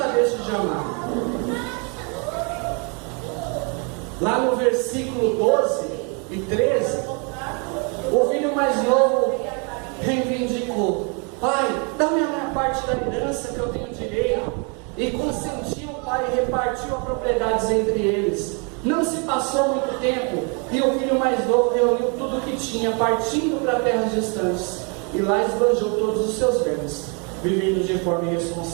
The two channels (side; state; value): left; quieter; 35.4 dB